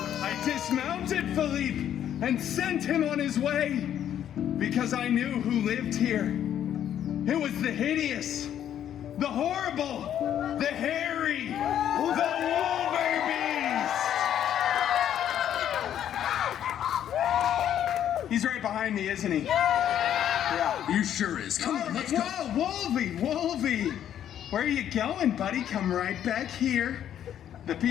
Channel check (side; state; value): right; quieter; 10.3 dB